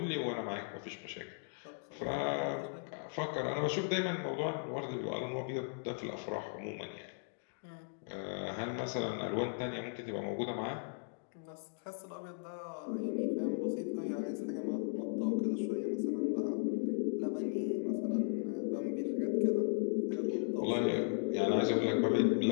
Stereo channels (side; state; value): right; silent; digital silence